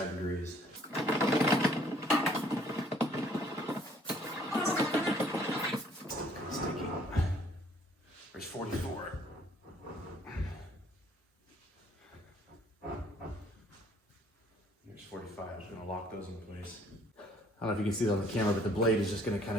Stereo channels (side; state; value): both; normal; correlation 0.61